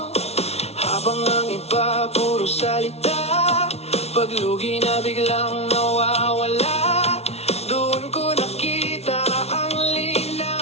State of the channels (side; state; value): right; late; 0.31 ms